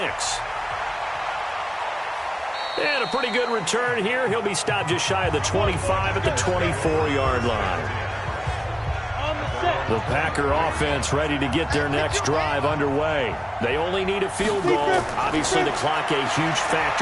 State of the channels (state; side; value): identical; both; correlation 1.00